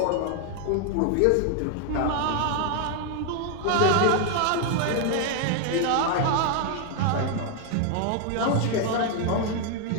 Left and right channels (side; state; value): both; different; correlation 0.00